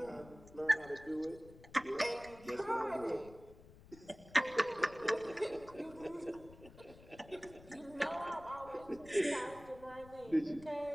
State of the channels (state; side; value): noise; left; rumble, 20 dB below the sound